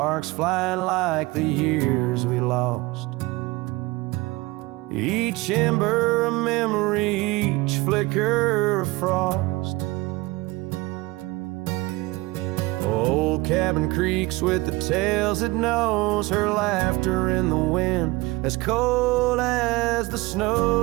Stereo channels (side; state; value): left; quieter; 21.5 dB